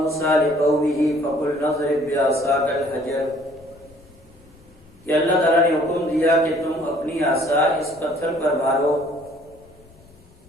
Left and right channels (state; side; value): noise; left; rumble, 27 dB below the sound